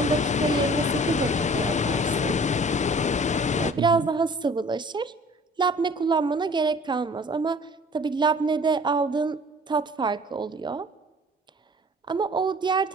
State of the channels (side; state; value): both; normal; correlation 0.49